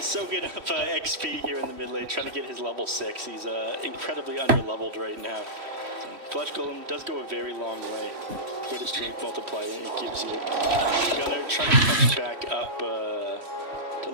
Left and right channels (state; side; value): late; left; 3.1 ms